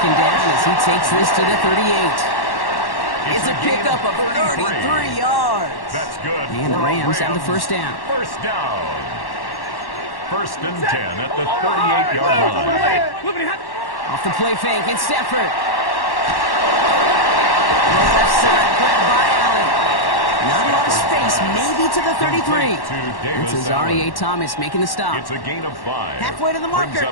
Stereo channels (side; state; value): right; late; 1.1 ms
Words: down as he takes this to the 38. It's a pickup of 33 yards. That's good. And the Rams have the first down. First down. 1st and 10 at the 38-yard line. Off the play fake, it's Stafford. Left side, grabbed by Allen. Not a lot of space, maybe to the 33. It's Azareye'h Thomas making the stop. It's a gain of 5. Halfway to the marker,